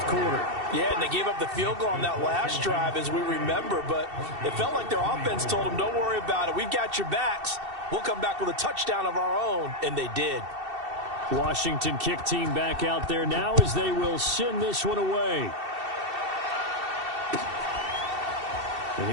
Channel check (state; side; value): late; left; 2.7 ms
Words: quarter. Yeah, and they gave up the field goal on that last drive, as we remember, but it felt like their offense told them, don't worry about it. We've got your backs. We'll come back with a touchdown of our own, and they did. Washington kick team back out there now as they will send this one away. And